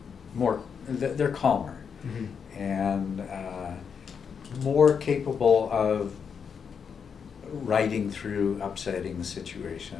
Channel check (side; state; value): right; quieter; 6.6 dB